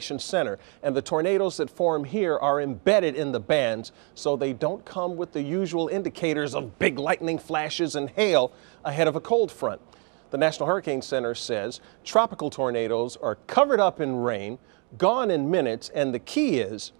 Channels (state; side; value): quieter; left; 36.5 dB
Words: center, and the tornadoes that form here are embedded in the bands, so they don't come with the usual indicators of big lightning flashes and hail ahead of a cold front. The National Hurricane Center says tropical tornadoes are covered up in rain, gone in minutes, and the key is